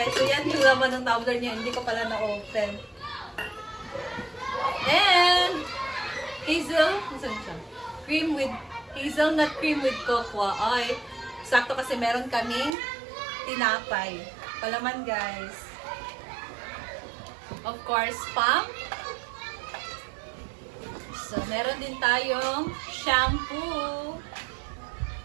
so yan yung laman ng tumbler niya. Hindi ko pala na-open. And saan siya? Hazelnut cream with cocoa. Ay, sakto kasi meron kaming tinapay. Palaman guys. Of course, spam. So, meron din tayong shampoo.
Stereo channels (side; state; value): left; drops out; at 12.8 s